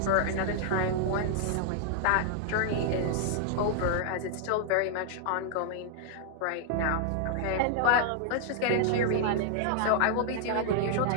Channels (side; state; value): both; different; correlation -0.01